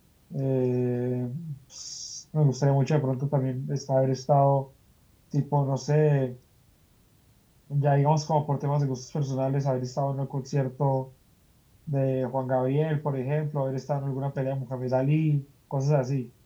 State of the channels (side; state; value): both; identical; correlation 1.00